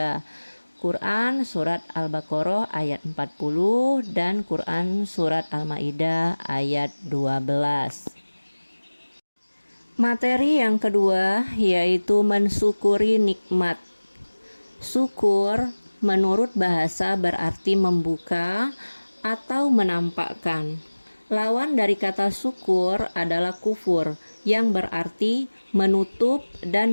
Quran Surat Al-Baqarah ayat 40 dan Quran Surat Al-Maidah ayat 12. Materi yang kedua yaitu mensyukuri nikmat. Syukur menurut bahasa berarti membuka atau menampakkan. Lawan dari kata syukur adalah kufur yang berarti menutup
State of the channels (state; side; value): inverted; both; correlation -1.00